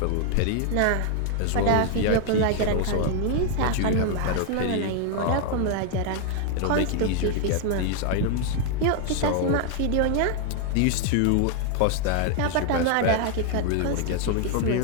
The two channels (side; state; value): both; different; correlation 0.00